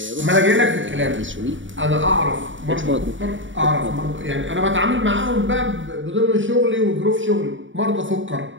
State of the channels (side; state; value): left; late; 0.56 ms